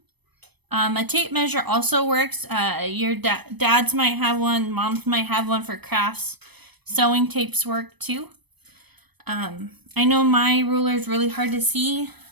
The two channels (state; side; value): late; left; 0.98 ms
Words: A tape measure also works. Your dads might have one, moms might have one for crafts. Sewing tapes work too. I know my ruler is really hard to see,